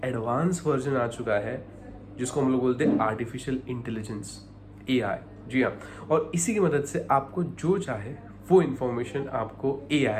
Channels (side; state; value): both; identical; correlation 1.00